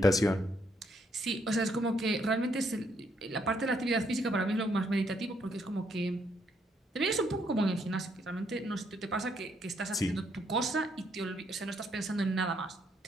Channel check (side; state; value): both; normal; correlation 0.72